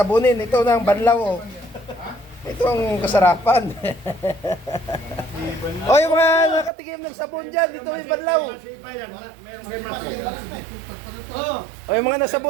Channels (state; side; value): drops out; left; at 6.7 s